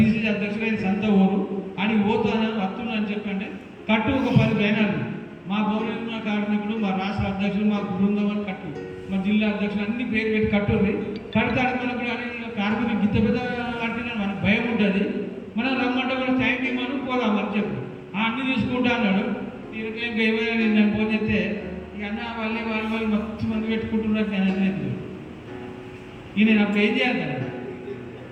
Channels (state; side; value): identical; both; correlation 1.00